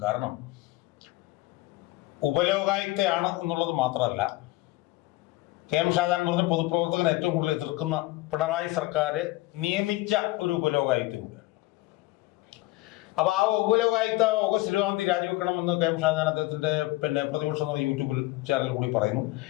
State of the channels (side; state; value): right; quieter; 19.3 dB